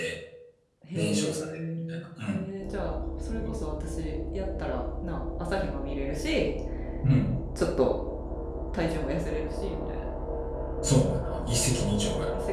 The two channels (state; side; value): identical; both; correlation 1.00